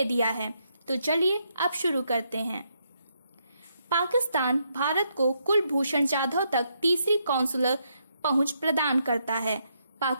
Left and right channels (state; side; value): inverted; both; correlation -0.77